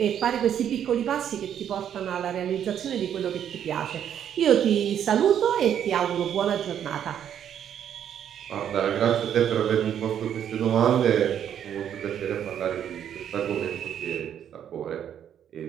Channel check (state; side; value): quieter; left; 9.4 dB